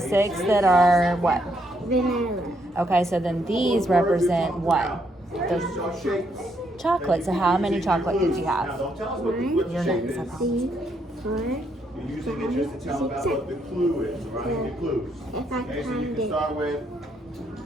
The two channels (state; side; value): normal; both; correlation 0.75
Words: that are what? Vanilla. Okay, so then these represent what? The So shapes. chocolate. So how many chocolate did you Now, have? don't tell us what the Your shape names, is. I promise. 3, 4. You're using it just to tell about what the clue is, right? The clues. If I Okay, so you find can it start with,